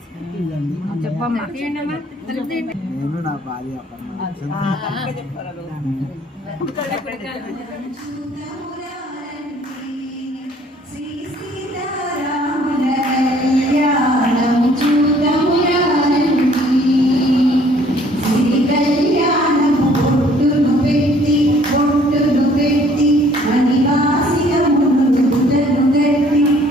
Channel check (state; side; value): normal; both; correlation 0.59